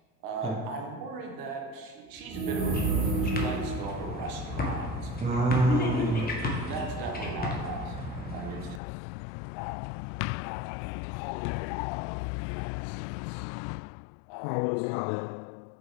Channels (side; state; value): right; drops out; at 8.8 s